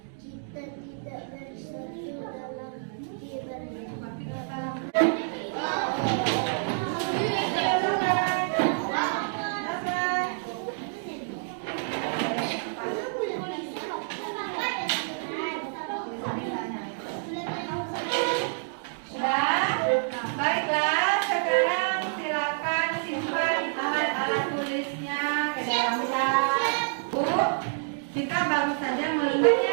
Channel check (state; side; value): silent; left; digital silence